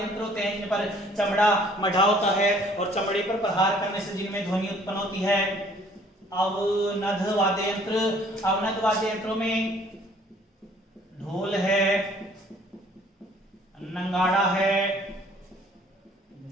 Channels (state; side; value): normal; both; correlation 0.57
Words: यंत्र होते हैं जिन पर चमड़ा मढ़ा होता है और चमड़े पर प्रहार करने से जिनमें ध्वनि उत्पन्न होती है। अवनद वाद्य यंत्र, अवनद वाद्य यंत्रों में ढोल है, नंगाड़ा है,